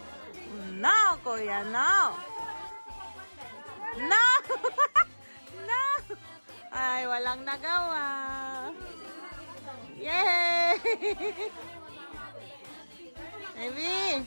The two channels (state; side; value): inverted; both; correlation -1.00